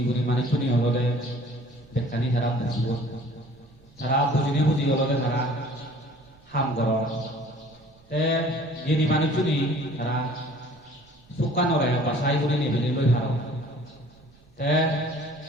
গুণী মানুষ শুনি হলে বেকানি তারা বুঝব, তারা বুঝিনে বুঝি হলে তারা হাম কর। তে জ্ঞানী মানুষ শুনি তারা সুকানরে বাসাই করে নেবেলে লই ভালো। তে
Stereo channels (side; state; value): right; noise; rumble, 29 dB below the sound